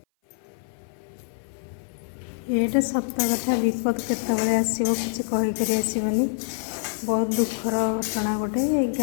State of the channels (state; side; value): silent; right; 57 dB below the other